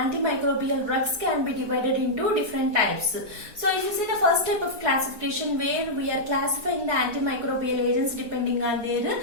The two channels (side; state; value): left; late; 4.5 ms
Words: drugs can be divided into different types. So if you see the first type of classification, where we are classifying the antimicrobial agents depending on their